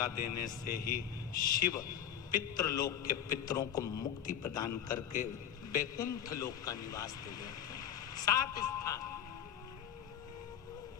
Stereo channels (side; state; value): right; quieter; 9.6 dB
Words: देने से ही शिव पितृलोक के पितरों को मुक्ति प्रदान करके वैकुंठ लोक का निवास दे देते हैं। 7 स्थान।